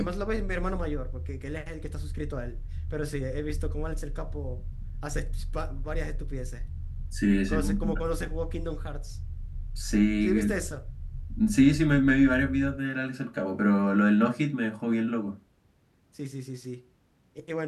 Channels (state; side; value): identical; both; correlation 1.00